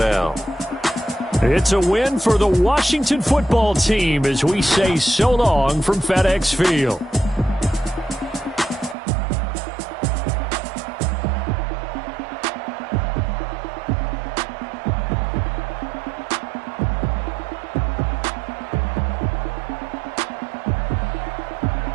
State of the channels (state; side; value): drops out; left; at 9.0 s